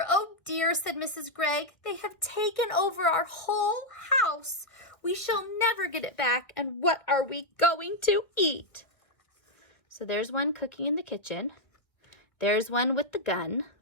said Mrs. Gregg. They have taken over our whole house. We shall never get it back, and what are we going to eat? So there's one cooking in the kitchen. There's one with the gun.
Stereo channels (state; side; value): late; right; 1.4 ms